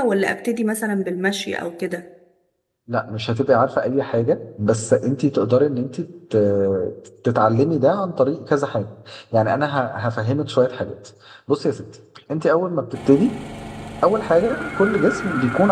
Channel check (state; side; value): identical; both; correlation 1.00